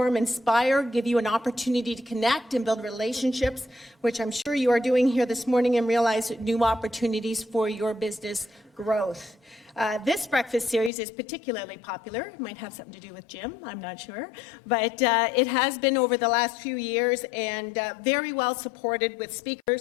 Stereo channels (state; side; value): drops out; right; at 10.9 s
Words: inspire, give you an opportunity to connect and build relationships, which I'm sure you are doing here this morning, and realize new opportunities for your business growth. This breakfast series is particularly popular. It might have something to do with Jim, I'm not sure. But it has been over the last few years and very well supported with